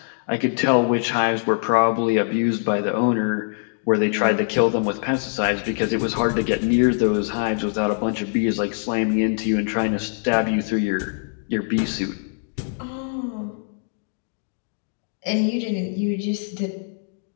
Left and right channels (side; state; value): right; silent; digital silence